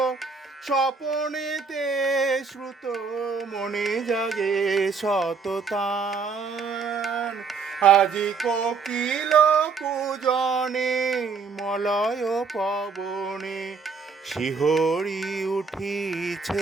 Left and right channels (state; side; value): quieter; left; 5.1 dB